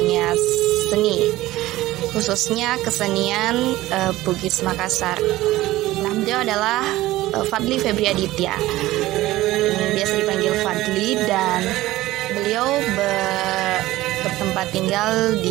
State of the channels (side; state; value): left; quieter; 16.8 dB